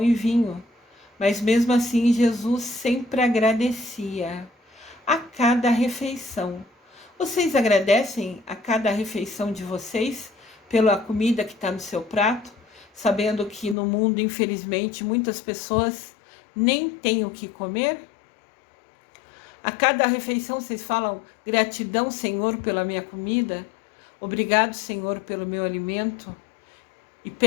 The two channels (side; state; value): right; drops out; at 13.8 s